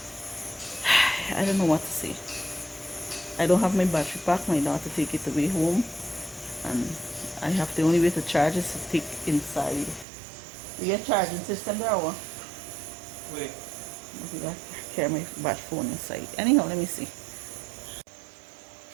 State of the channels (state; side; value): drops out; left; at 10.1 s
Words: I don't know what to say. I don't have my battery pack. My daughter take it away home, and I have the only way to charge is to take inside. You get charging system there or? Wait. I got to carry my battery phone inside. Anyhow, let me see.